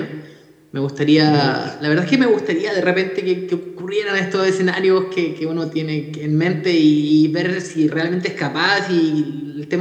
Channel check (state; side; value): identical; both; correlation 1.00